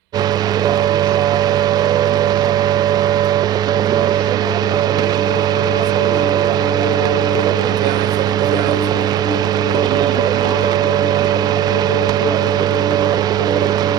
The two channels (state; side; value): quieter; left; 9.9 dB